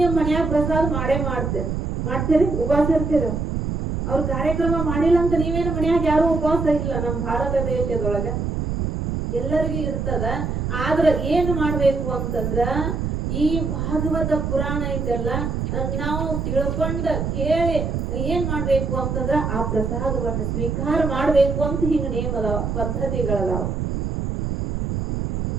ನಿಮ್ ಮನ್ಯಾಗ ಪ್ರಸಾದ ಮಾಡ್ತೀರಿ, ಉಪವಾಸ ಇರ್ತೀರ. ಅವ್ರ ಕಾರ್ಯಕ್ರಮ ಮಾಡಿಲ್ಲ ಅಂತ ನೀವೇನು ಮನ್ಯಾಗ ಯಾರು ಉಪವಾಸ ಇಲ್ಲ. ನಮ್ಮ ಭಾರತ ದೇಶದೊಳಗ ಎಲ್ಲರಿಗೂ ಇರ್ತದ. ಆದ್ರ ಏನ್ ಮಾಡ್ಬೇಕು ಅಂತಂದ್ರ ಈ ಭಾಗವತ ಪುರಾಣ ಐತೆಲ್ಲ ನಾವು ತಿಳ್ಕೊಂಡ ಕೇಳಿ ಏನ್ ಮಾಡ್ಬೇಕು ಅಂತಂದ್ರ ಆ ಪ್ರಸಾದವನ್ನ ಸ್ವೀಕಾರ ಮಾಡ್ಬೇಕು ಅಂತ ಹಿಂಗ ನೇಮ ಅದಾವ, ಪದ್ಧತಿಗಳದಾವ.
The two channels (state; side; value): noise; right; rumble, 2 dB below the sound